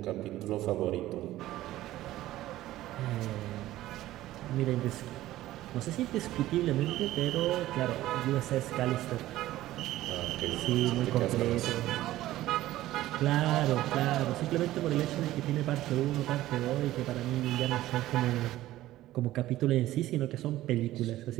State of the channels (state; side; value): quieter; left; 15.3 dB